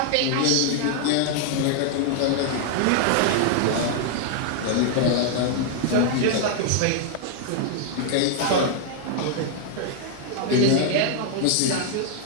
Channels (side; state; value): both; different; correlation 0.00